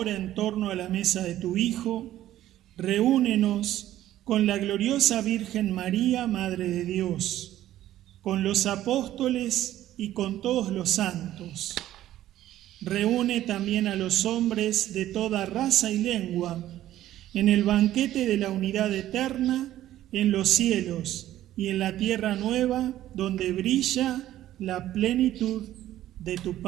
en torno a la mesa de tu Hijo, reúnenos con la gloriosa Virgen María, Madre de Dios, con los apóstoles y con todos los santos. Reúne también a los hombres de toda raza y lengua en el banquete de la unidad eterna en los cielos y en la tierra nueva, donde brilla la plenitud de tu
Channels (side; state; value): left; quieter; 13.4 dB